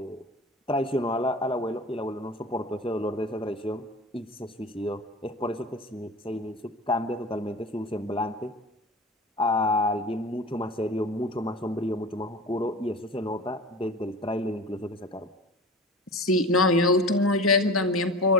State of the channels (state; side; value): normal; both; correlation 0.35